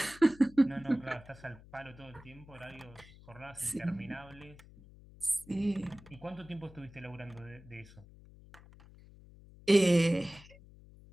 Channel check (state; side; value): noise; left; hum, 21 dB below the sound